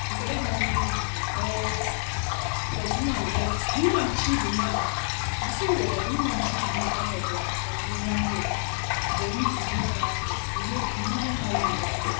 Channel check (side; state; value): right; silent; 60 dB below the other